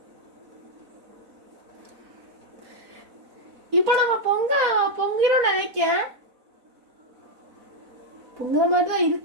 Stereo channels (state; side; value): late; left; 4.0 ms